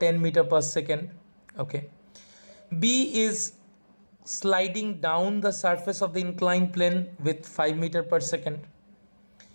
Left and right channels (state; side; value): inverted; both; correlation -1.00